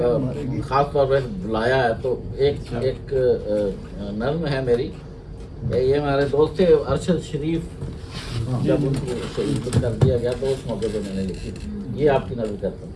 खास तौर पर बुलाया है, तो एक नर्म है मेरी। ये हमारे दोस्त थे अरशद शरीफ, जब उनको शहीद कर दिया गया तो उस मौके पे मैंने लिखी। ये आपकी नजर करता हूँ।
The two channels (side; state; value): both; identical; correlation 1.00